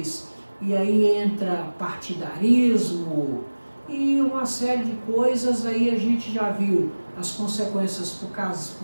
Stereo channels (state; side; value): inverted; both; correlation -1.00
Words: e aí entra partidarismo e uma série de coisas. Aí a gente já viu as consequências para